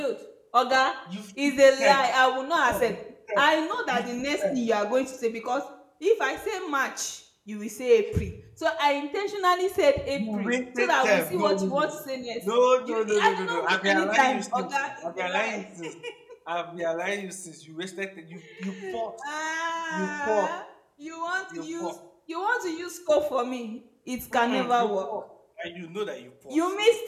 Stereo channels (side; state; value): both; identical; correlation 1.00